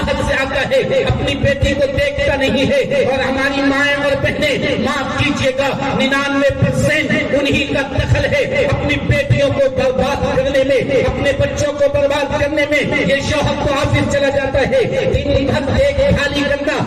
سے آتا ہے، اپنی بیٹی کو دیکھتا نہیں ہے. اور ہماری مائیں اور بہنیں، معاف کیجیے گا، 99% انہی کا دخل ہے اپنی بیٹیوں کو برباد کرنے میں، اپنے بچوں کو برباد کرنے میں. یہ شوہر تو آفس چلا جاتا ہے، دن بھر دیکھ بھالی کرنا،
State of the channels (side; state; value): both; identical; correlation 1.00